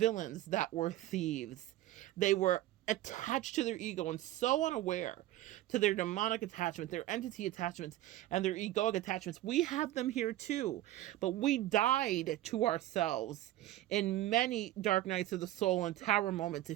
that were thieves. They were attached to their ego and so unaware to their demonic attachment, their entity attachments, and their egoic attachments. We have them here too, but we died to ourselves in many dark nights of the soul and tower moments.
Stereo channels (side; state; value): left; quieter; 14.9 dB